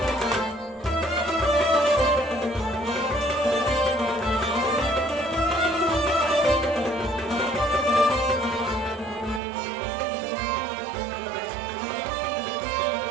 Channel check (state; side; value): drops out; left; at 9.4 s